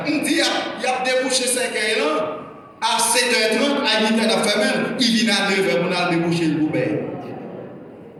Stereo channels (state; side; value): identical; both; correlation 1.00